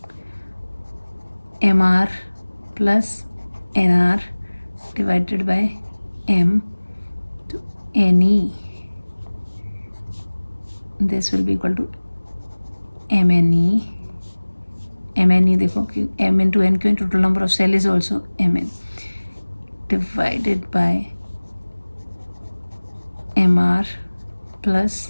MR plus NR divided by M to NE. this will be equal to MNE. MNE देखो कि M into N क्यों, total number of cell is also Mn divided by MR plus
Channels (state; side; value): inverted; both; correlation -1.00